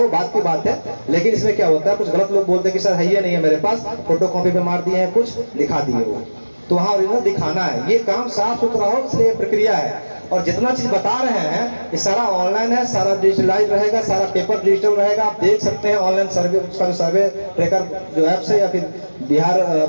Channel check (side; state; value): both; inverted; correlation -1.00